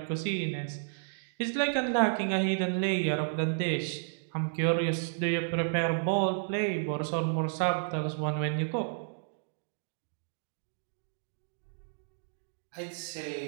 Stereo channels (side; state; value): left; silent; digital silence